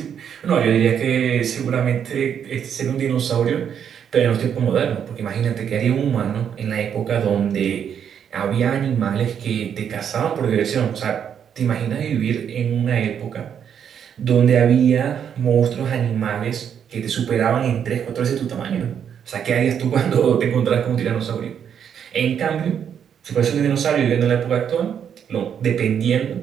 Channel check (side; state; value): left; quieter; 8.3 dB